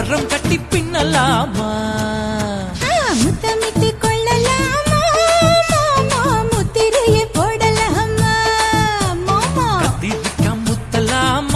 கட்டி பின்னலாமா. முத்தமிட்டு கொள்ளலாமா மாமா, முத்திரைய போடலாமா மாமா. கத்திரிக்கா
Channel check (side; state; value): both; identical; correlation 1.00